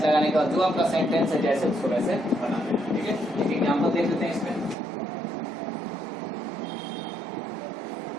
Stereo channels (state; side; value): drops out; left; at 4.8 s